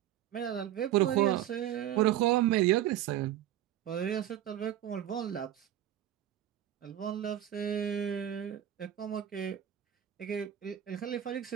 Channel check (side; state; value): left; quieter; 11.9 dB